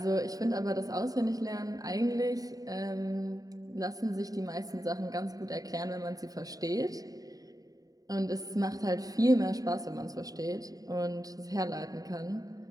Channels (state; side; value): late; left; 0.18 ms